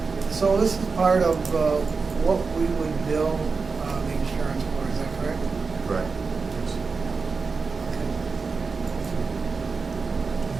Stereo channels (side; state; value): left; quieter; 4.6 dB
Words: So this is part of what we would bill the insurance for, is that correct? Correct.